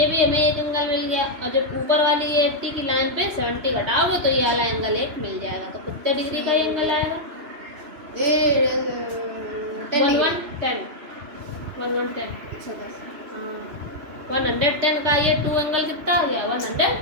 भी हमें एक एंगल मिल गया। और जब ऊपर वाली ये 80 की लाइन पे 70 घटाओगे तो ये वाला एंगल एक मिल जाएगा। तो कितने डिग्री का एंगल आएगा 110 का ये 2 एंगल कितना हो गया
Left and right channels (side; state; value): left; late; 3.2 ms